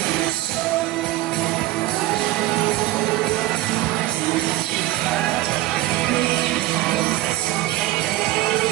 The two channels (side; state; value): left; quieter; 16.6 dB